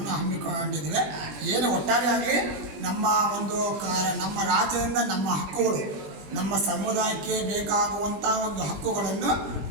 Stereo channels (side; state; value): left; late; 21 ms